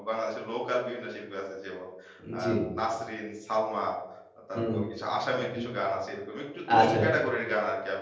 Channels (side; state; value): both; identical; correlation 1.00